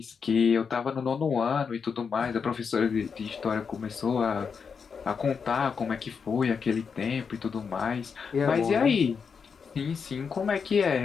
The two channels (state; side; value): quieter; right; 6.0 dB